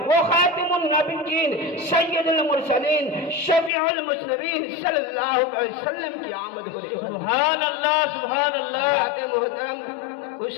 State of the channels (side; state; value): right; drops out; at 3.7 s